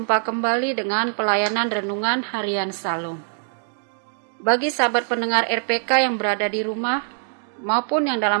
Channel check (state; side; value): silent; left; digital silence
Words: kembali dengan pelayanan renungan harian Salum. Bagi sahabat pendengar RPK yang berada di rumah maupun yang